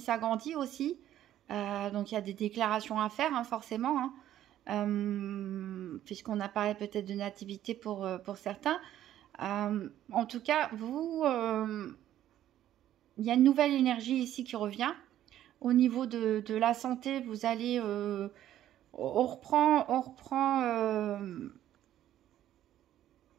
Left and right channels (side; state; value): left; quieter; 12.2 dB